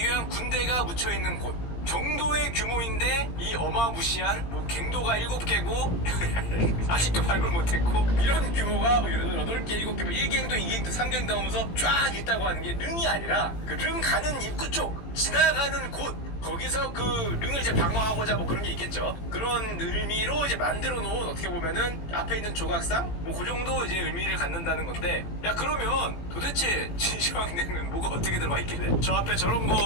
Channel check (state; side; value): late; right; 18 ms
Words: 위한 군대가 묻혀 있는 곳 정도의 규모인데 이 어마무시한 뭐 갱도가 7개고 아직도 발굴 못했고 이런 규모가 8개, 7개, 1갱도, 2갱도, 3갱도 하면서 쫙 있다고 하는 게 릉이 아니라 그 릉 가는 입구 쪽 지나가는 곳 거기서 그 릉을 이제 방어하고자 뭐 그런 게 있겠죠. 그런 의미로 이제 만들어 놓은 어떻게 보면은 앞에 있는 조각상 뭐 그 정도 이제 의미를 갖는다는 건데 야 그러면 도대체 진시황릉은 뭐가 어떻게 들어가 있길래 저 앞에 저런